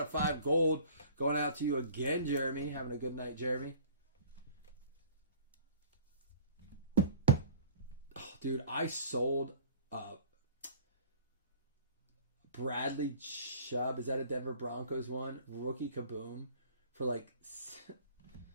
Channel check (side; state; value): both; inverted; correlation -0.47